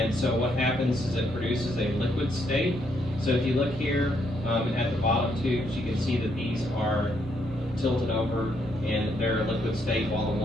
so what happens is it produces a liquid state. So if you look here at the bottom tubes, you can see that these are tilted over and they're a liquid state, while the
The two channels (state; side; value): normal; both; correlation 0.74